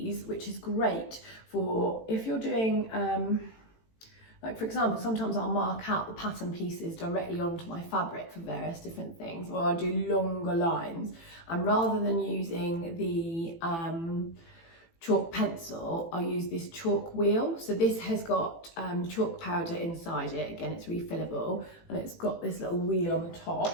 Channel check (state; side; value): late; right; 18 ms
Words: which is great for if you're doing, like for example, sometimes I'll mark out the pattern pieces directly onto my fabric for various different things, or I do longer lines, and rather than using the chalk pencil, I use this chalk wheel. So this has got chalk powder inside it. Again, it's refillable, and it's got this little wheel on the